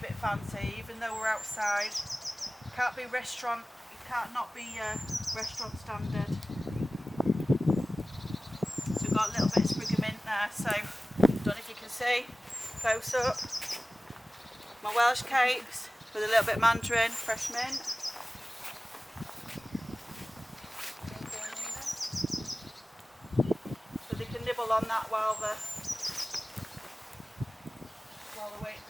bit fancy, even though we're outside. Can't be restaurant. It can't not be restaurant standard. So we've got a little bit of sprig of mint there. So I don't know if you can see. Close up. My Welsh cakes with a little bit of mandarin, fresh mint. So they can nibble on that while they're waiting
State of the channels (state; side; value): normal; both; correlation 0.97